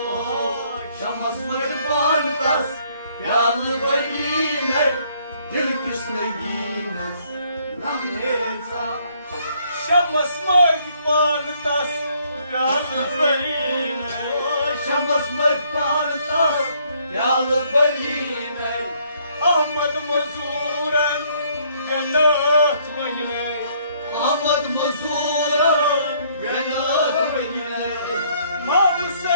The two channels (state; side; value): inverted; both; correlation -0.66